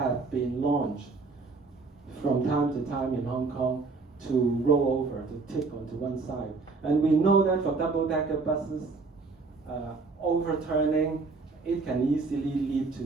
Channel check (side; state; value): left; quieter; 4.1 dB